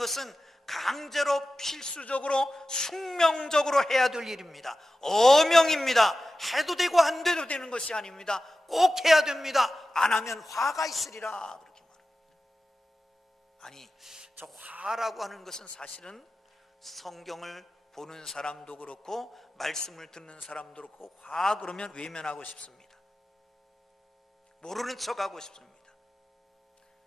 강제로 필수적으로 숙명적으로 해야 될 일입니다. 어명입니다. 해도 되고 안 돼도 되는 것이 아닙니다. 꼭 해야 됩니다. 안 하면 화가 있으리라 그렇게 말합니다. 아니, 저 화라고 하는 것은 사실은 성경을 보는 사람도 그렇고 말씀을 듣는 사람도 그렇고 화 그러면 외면하고 싶습니다. 모르는 척하고 싶습니다.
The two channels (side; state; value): both; normal; correlation 0.94